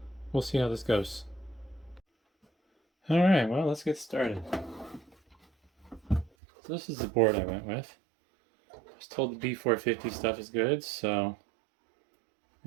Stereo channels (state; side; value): drops out; left; at 6.3 s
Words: we'll see how this goes. Alright, well, let's get started. So this is the board I went with. I was told the B450 stuff is good, so